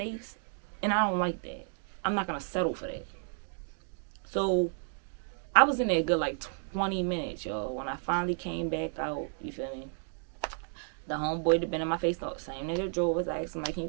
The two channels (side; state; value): left; silent; 56 dB below the other